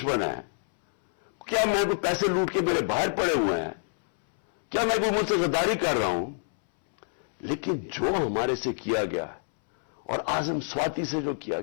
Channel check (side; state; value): right; silent; 60 dB below the other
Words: हैं क्या? मैं कोई पैसे लूट के मेरे बाहर पड़े हुए हैं क्या? मैं कोई मुझसे गद्दारी कर रहा हूं? लेकिन जो हमारे से किया गया है और आजम स्वाति से जो किया